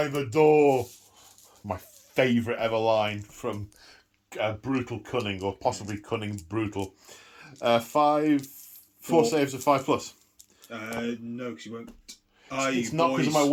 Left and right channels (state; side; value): identical; both; correlation 1.00